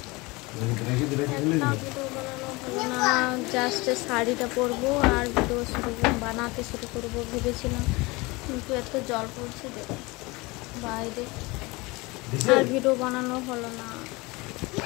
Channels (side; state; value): right; quieter; 24.0 dB